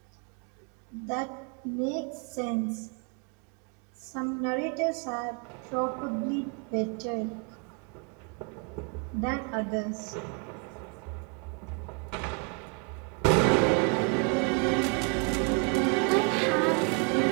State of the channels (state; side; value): quieter; left; 36.1 dB